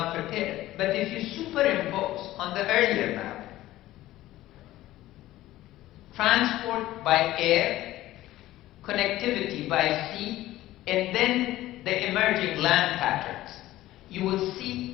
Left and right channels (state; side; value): quieter; right; 15.6 dB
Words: prepared. But if you superimpose on the earlier map, transport by air, connectivity by sea, and then the emerging land patterns, you will